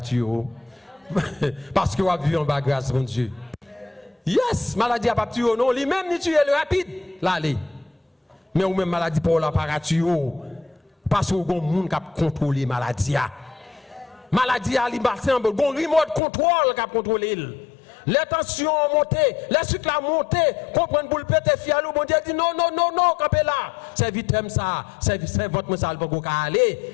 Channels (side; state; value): right; drops out; at 16.2 s